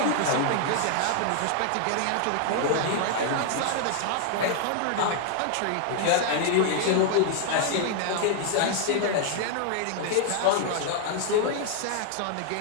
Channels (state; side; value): different; both; correlation 0.00